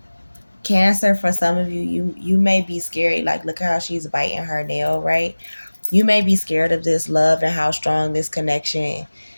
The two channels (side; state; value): both; inverted; correlation -1.00